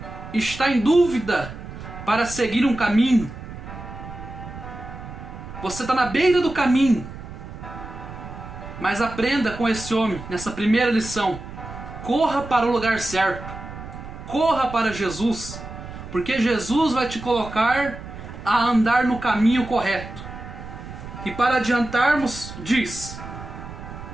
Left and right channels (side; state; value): right; noise; rumble, 12 dB below the sound